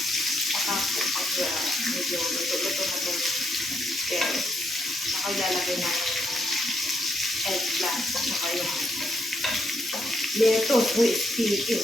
Saka pag medyo luto-luto na itong carrots, saka ilalagay na yung eggplant. Saka yung lettuce. Uy, speaking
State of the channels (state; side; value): normal; both; correlation 0.78